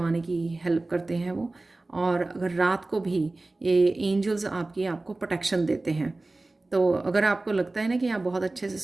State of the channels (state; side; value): quieter; left; 3.1 dB